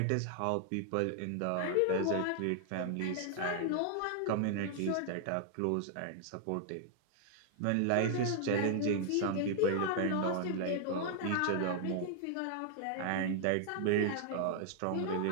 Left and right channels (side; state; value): both; different; correlation 0.00